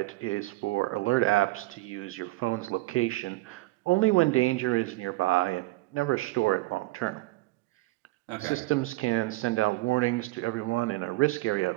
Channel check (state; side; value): quieter; left; 20.4 dB